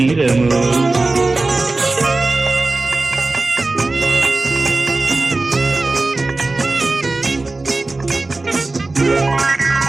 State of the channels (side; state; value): left; quieter; 3.3 dB